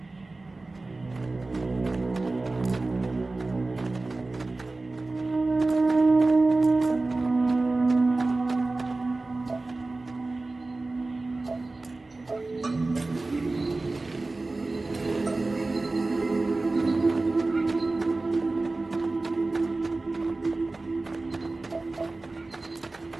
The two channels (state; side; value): quieter; left; 3.3 dB